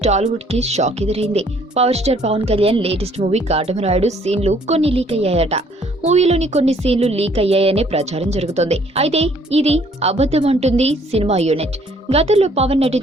టాలీవుడ్ కి షాక్ ఎదురైంది. Power star Pawan Kalyan latest movie Katamarayudu సీన్లు కొన్ని లీక్ అయ్యాయట. మూవీలోని కొన్ని సీన్లు లీక్ అయ్యాయనే ప్రచారం జరుగుతోంది. అయితే ఇది అబద్ధం అంటుంది సినిమా యూనిట్. గతంలో పవన్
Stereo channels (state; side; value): normal; both; correlation 0.61